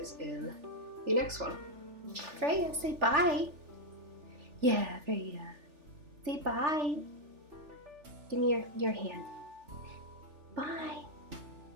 in the next one. Freya, say bye. Yeah, Freya. Say bye. Give me your hand. Bye.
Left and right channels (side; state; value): left; late; 3.4 ms